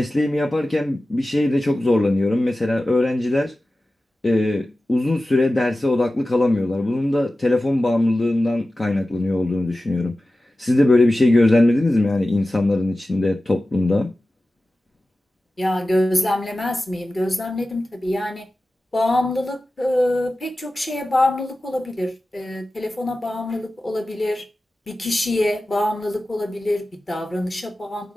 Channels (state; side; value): normal; both; correlation 0.95